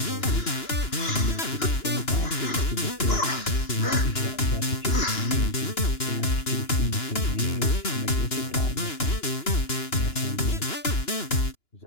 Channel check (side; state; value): right; late; 2.9 ms